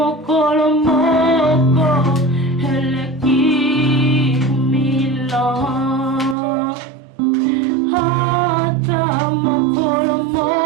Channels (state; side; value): drops out; left; at 6.4 s